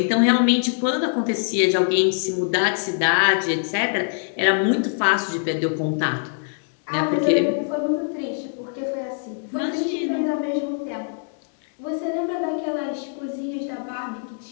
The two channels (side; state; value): right; silent; digital silence